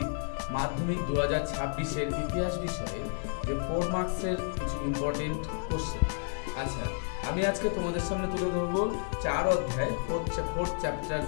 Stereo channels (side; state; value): right; silent; digital silence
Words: মাধ্যমিক 2026-এর ইতিহাস বিষয়ে যে 4 মার্কসের কিছু ইম্পর্টেন্ট কোশ্চেন। আচ্ছা, আমি আজকে তোমাদের সামনে তুলে ধরবো 4 অধ্যায়, ফোর্থ চ্যাপ্টার,